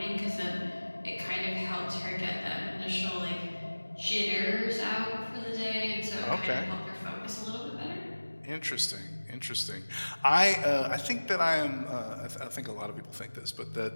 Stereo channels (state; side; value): inverted; both; correlation -1.00